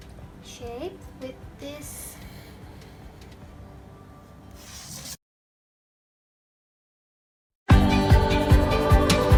shape with this.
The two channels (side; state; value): both; identical; correlation 1.00